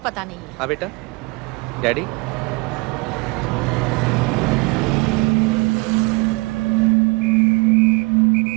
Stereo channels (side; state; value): left; quieter; 27.6 dB